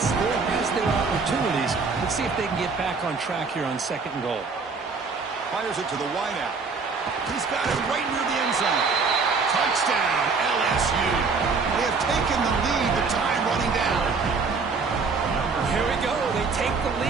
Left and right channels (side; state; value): left; quieter; 4.7 dB